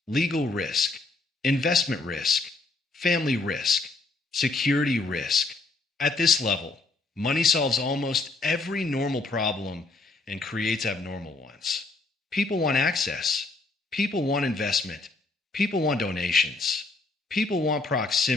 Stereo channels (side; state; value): right; quieter; 3.4 dB